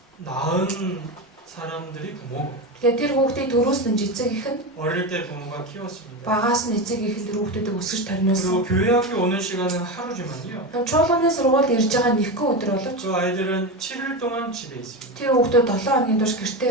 낳은 사람들이 부모고 Тэгэхээр тэр хүүхдийг төрүүлсэн эцэг эх нь 어릴 때 부모가 키웠습니다. багаас нь эцэг эх нь тэр хүүхдүүдийг өсгөж тарниулсан. 그리고 교회 학교 오는 시간은 하루지만요. Чуулганы сургуульд ирж байгаа нэгэн өдөр боловч 그 아이들은 7일 동안 집에 있습니다. тэр хүүхдүүд 7 хоногийн турш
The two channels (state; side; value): normal; both; correlation 0.19